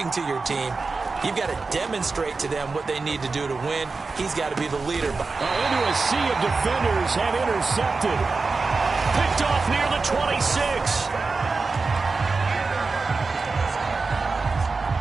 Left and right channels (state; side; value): quieter; left; 4.1 dB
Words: to your team. You've got to demonstrate to them what they need to do to win. He's got to be the leader. Into a sea of defenders and intercepted. Picked off near the 26.